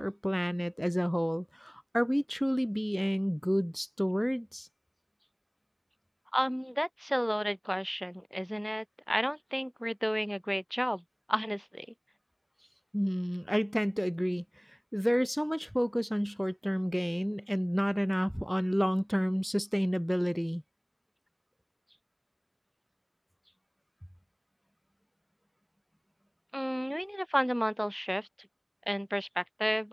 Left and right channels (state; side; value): identical; both; correlation 1.00